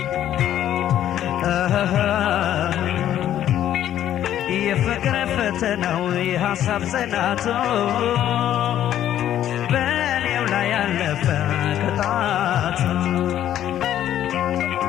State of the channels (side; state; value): right; quieter; 11.5 dB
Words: የፍቅር ፈተናው የሐሳብ ጽናቱ በእኔው ላይ ያለፈ ቅጣቱ